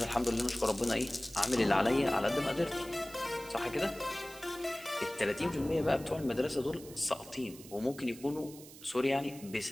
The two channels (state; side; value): noise; right; hiss, 18 dB below the sound